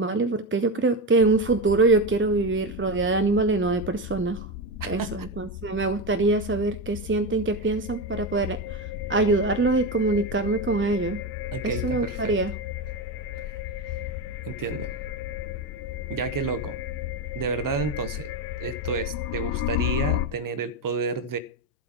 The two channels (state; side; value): normal; both; correlation 0.15